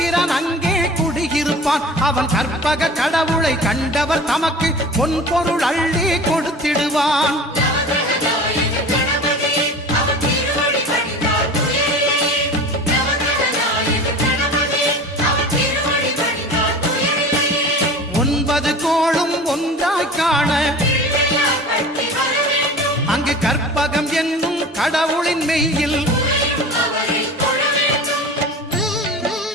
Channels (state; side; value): normal; both; correlation 0.38